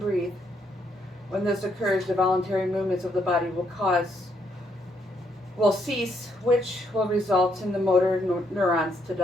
When this occurs, the voluntary movements of the body will cease, which will result in the motor neurons to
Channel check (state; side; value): normal; both; correlation 0.74